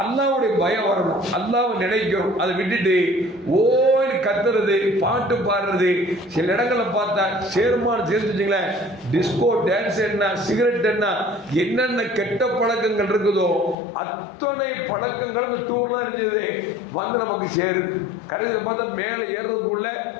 அல்லாஹ்வுடைய பயம் வரணும், அல்லாஹ்வை நினைக்கிறோம். அதை விட்டுட்டு ஓய் கத்துறது, பாட்டு பாடுறது, சில இடங்களை பார்த்தா சேர்மான் சேர்த்துச்சிங்களேன், டிஸ்கோ டான்ஸ் என்ன, சிகரெட் என்ன, என்னென்ன கெட்ட பழக்கங்கள் இருக்குதோ அத்தனை பழக்கங்கள் டூர்லாம் இருந்தது வந்து நமக்கு சேருது. கடைசியில் பார்த்தா மேலே ஏறதுக்குள்ள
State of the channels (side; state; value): right; drops out; at 13.8 s